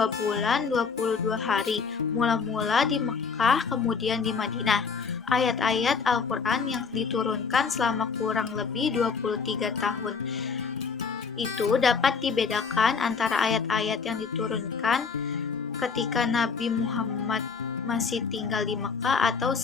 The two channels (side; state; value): right; quieter; 5.5 dB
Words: bulan, 22 hari, mula-mula di Mekah kemudian di Madinah. Ayat-ayat Al-Quran yang diturunkan selama kurang lebih 23 tahun itu dapat dibedakan antara ayat-ayat yang diturunkan ketika Nabi Muhammad masih tinggal di Mekah atau